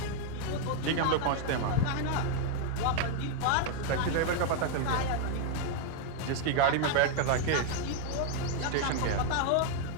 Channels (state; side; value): different; both; correlation 0.00